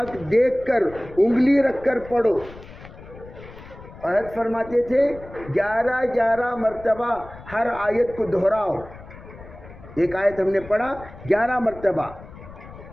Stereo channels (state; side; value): noise; left; rumble, 17 dB below the sound